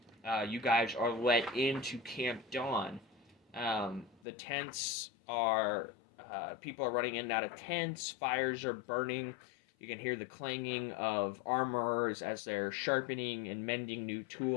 you guys are let into Camp Dawn. The tents are people are running in and out of tents. Fires are burning. You can hear the clanging of armorers as they're sharpening and mending new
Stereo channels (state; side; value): drops out; right; at 4.2 s